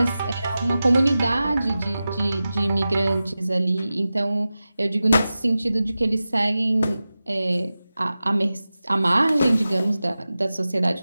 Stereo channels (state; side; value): inverted; both; correlation -0.95